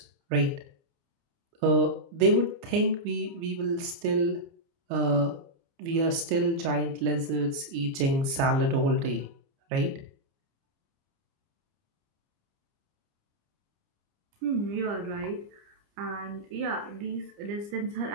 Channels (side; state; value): left; late; 30 ms